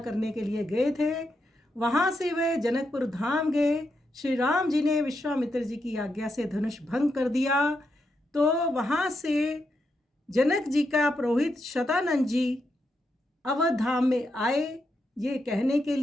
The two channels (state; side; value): normal; both; correlation 0.83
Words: करने के लिए गए थे। वहाँ से वे जनकपुर धाम गए। श्री राम जी ने विश्वामित्र जी की आज्ञा से धनुष भंग कर दिया। तो वहाँ से जनक जी का पुरोहित शतानंद जी अवध धाम में आए ये कहने के